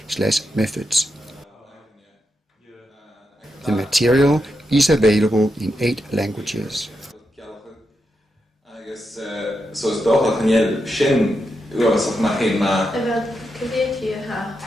The material is available in 8 languages.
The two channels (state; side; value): normal; both; correlation 0.85